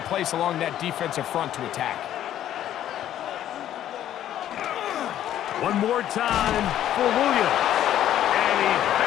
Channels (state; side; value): quieter; right; 11.6 dB